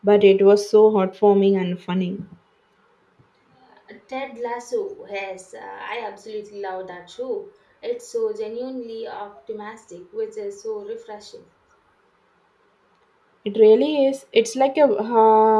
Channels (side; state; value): both; identical; correlation 1.00